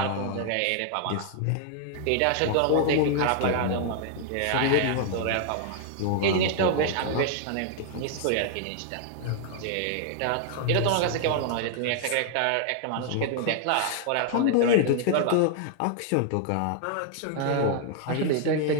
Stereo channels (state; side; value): different; both; correlation 0.00